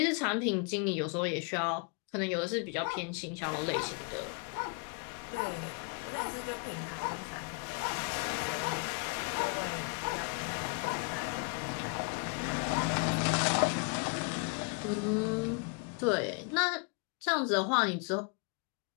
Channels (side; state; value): right; quieter; 35.4 dB